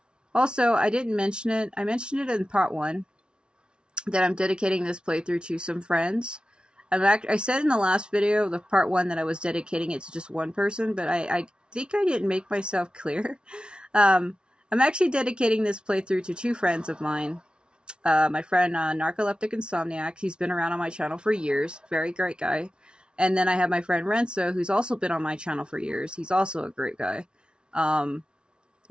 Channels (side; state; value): left; late; 0.056 ms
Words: Also, I didn't mention it. I mentioned it in part 1 that I'm dedicating this playthrough to some friends. I said in the last video, the part 1, that I was dedicating it to just one person, but I think I didn't make myself clear. I'm actually dedicating this playthrough to 2 friends of mine. My friend Narcoleptic Insomniac, he's been around on my channel for years, very great guy. And then I have my friend Renzo, who's also been on my channel for years. He's also a great guy.